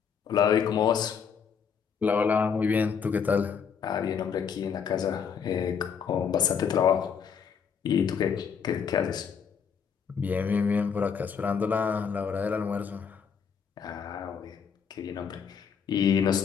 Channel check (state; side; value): quieter; right; 6.8 dB